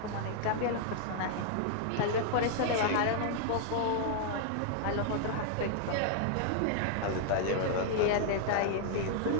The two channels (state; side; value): different; both; correlation 0.00